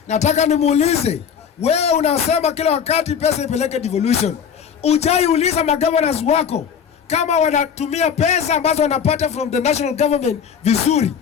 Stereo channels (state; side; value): quieter; right; 7.4 dB